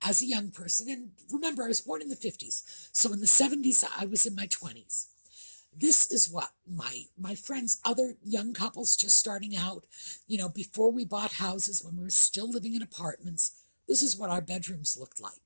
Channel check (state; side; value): inverted; both; correlation -1.00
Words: as a young person. And remember, I was born in the 50s. So in the 70s, I was in my 20s. This is what my friends, other young couples just starting out, before we bought houses, when we were still living in apartments, this is what our bedrooms looked